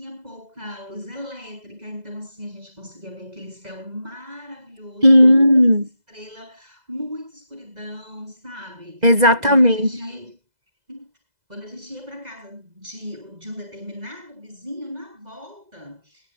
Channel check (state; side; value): late; left; 2.0 ms